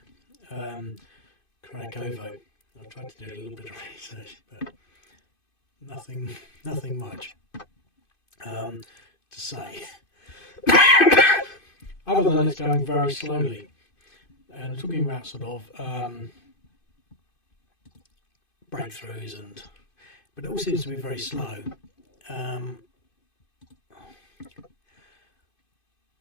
Kurakhovo. I've tried to do a little bit of research, but nothing much to say. Other than it's going very slowly. And talking about sort of breakthroughs, but it all seems to be very slow.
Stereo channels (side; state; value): right; late; 2.5 ms